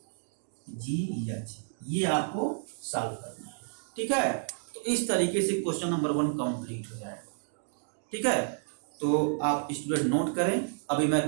ये आपको सॉल्व करना है, ठीक है। तो इस तरीके से क्वेश्चन नंबर 1 कंप्लीट हो जाएगा, ठीक है। तो आप स्टूडेंट नोट करें, अभी मैं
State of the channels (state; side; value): silent; left; digital silence